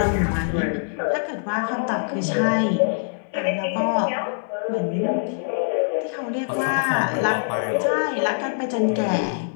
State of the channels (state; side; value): silent; right; 61 dB below the other